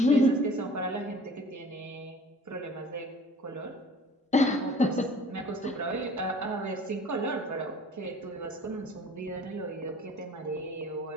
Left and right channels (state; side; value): normal; both; correlation 0.48